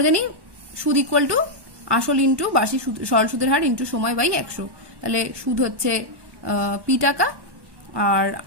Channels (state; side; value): late; left; 1.1 ms